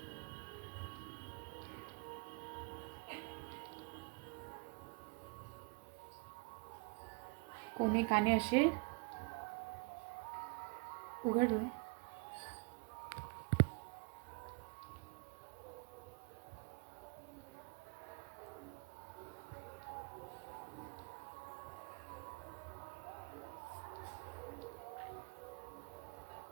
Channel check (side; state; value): left; quieter; 31.0 dB